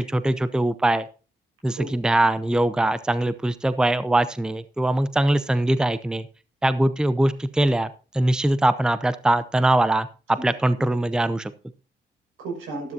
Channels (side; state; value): both; normal; correlation 0.94